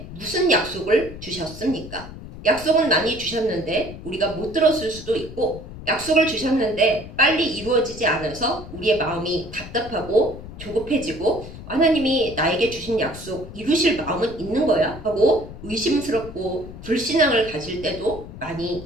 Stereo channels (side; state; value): left; noise; rumble, 13 dB below the sound